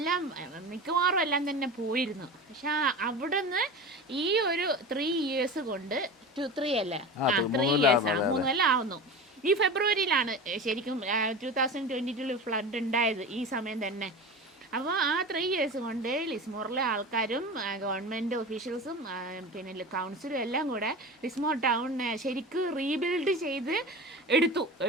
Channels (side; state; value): both; normal; correlation 0.30